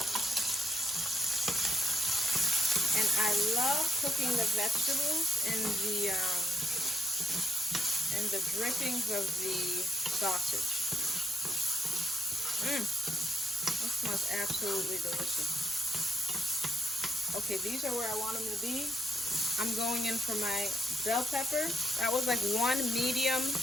And I love cooking the vegetables in the drippings of the sausage. That smells absolutely delicious. Okay, these are where I want them to be. I'm going in for my bell pepper. That was like one medium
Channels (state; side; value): normal; both; correlation 0.77